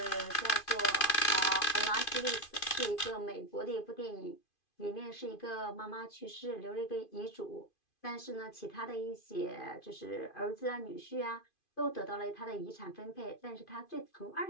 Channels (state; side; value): late; right; 2.5 ms